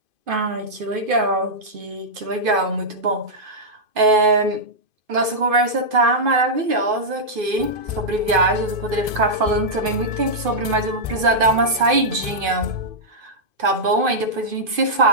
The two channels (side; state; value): left; late; 2.5 ms